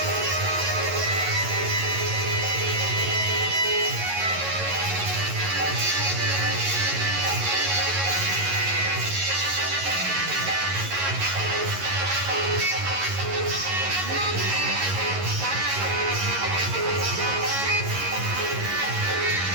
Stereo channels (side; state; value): left; late; 11 ms